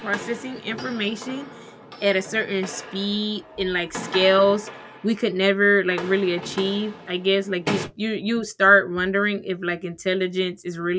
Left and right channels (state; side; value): identical; both; correlation 1.00